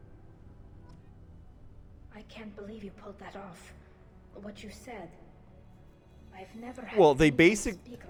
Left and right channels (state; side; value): identical; both; correlation 1.00